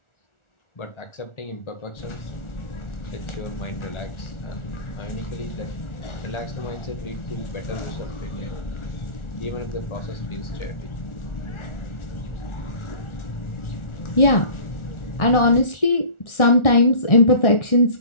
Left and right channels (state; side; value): late; right; 1.4 ms